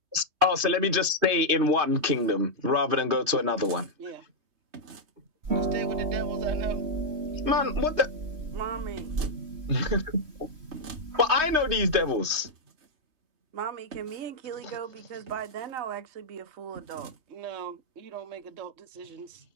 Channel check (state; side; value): late; left; 3.2 ms